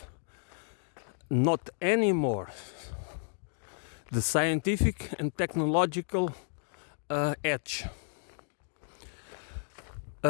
not anymore, the scientific and technological edge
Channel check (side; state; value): right; silent; 56 dB below the other